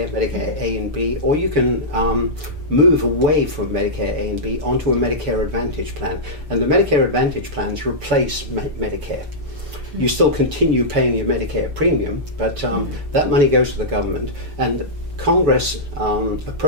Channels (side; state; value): left; late; 6.8 ms